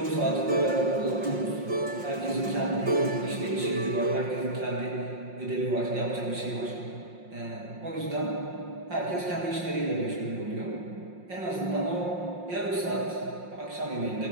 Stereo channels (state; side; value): late; left; 5.6 ms